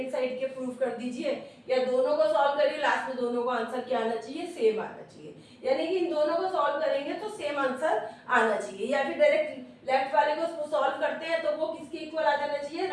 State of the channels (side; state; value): both; identical; correlation 1.00